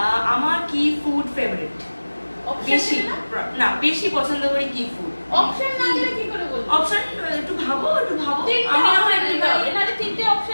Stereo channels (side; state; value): both; inverted; correlation -1.00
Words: আমার কি ফুড ফেভারিট, বেশি পছন্দ করি কি ফুড। অপশন না দিলে কি করে বলবো? অপশন একটু ভাবো। আমি আমার একটু ভাবি, নালে তিনটে